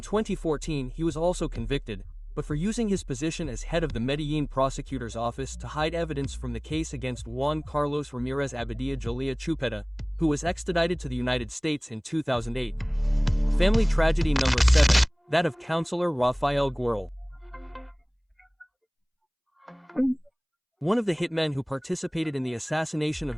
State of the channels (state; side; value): identical; both; correlation 1.00